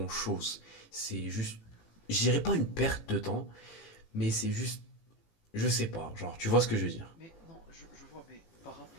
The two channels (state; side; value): late; right; 18 ms